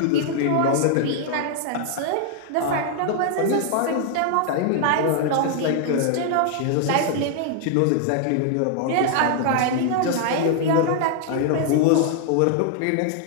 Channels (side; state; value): both; different; correlation 0.00